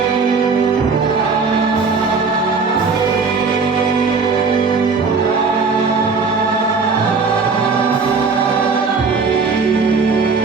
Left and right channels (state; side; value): quieter; left; 4.7 dB